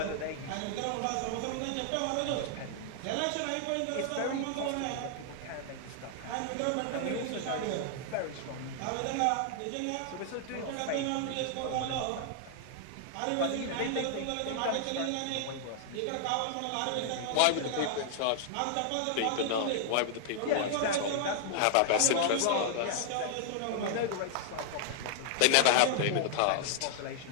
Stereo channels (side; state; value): both; different; correlation -0.01